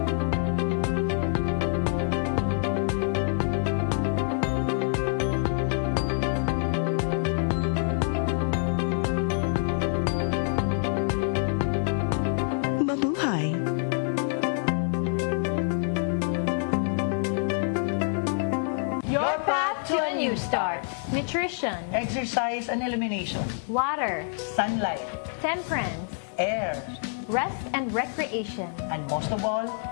Nutrition, exercise and elimination, water, sunlight, temperance, air, rest and recreation, and most of all,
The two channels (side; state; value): right; silent; digital silence